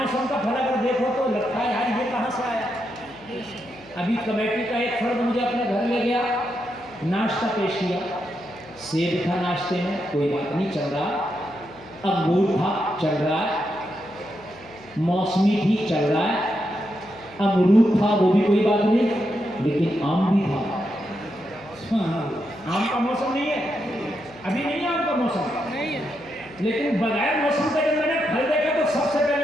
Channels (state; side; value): noise; left; hum, 23 dB below the sound